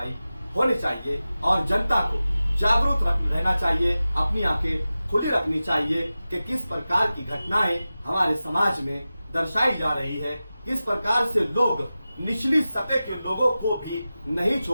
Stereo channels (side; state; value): both; inverted; correlation -0.95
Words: होनी चाहिए और जनता को जागरूक रहना चाहिए, अपनी आंखें खुली रखनी चाहिए कि किस प्रकार की घटनाएं हमारे समाज में दर्शाई जा रही है। इस प्रकार से लोग निचली सतह के लोगों को भी नहीं